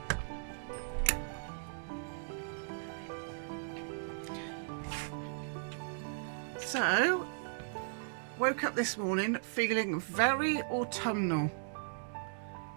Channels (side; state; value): left; silent; digital silence